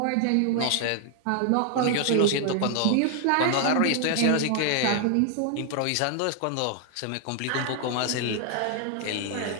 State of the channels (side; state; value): both; different; correlation 0.00